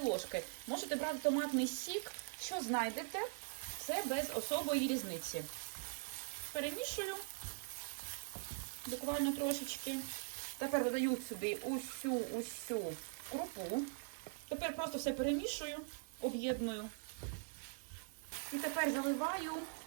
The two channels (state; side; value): silent; left; digital silence